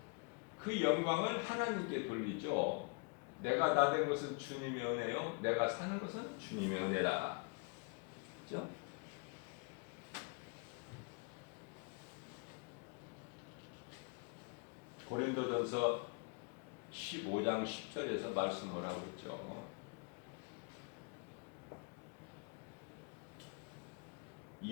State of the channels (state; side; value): quieter; right; 33.1 dB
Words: 그 영광을 하나님께 돌리죠. 내가 나 된 것은 주님의 은혜요. 내가 사는 것은 주님의 은혜다. 그렇죠? 고린도전서 15장 10절에서 말씀을 하고 있죠.